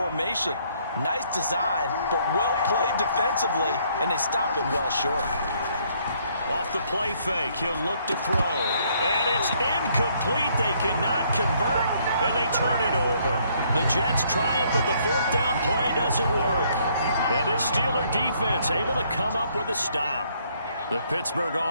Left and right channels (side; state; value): both; inverted; correlation -0.67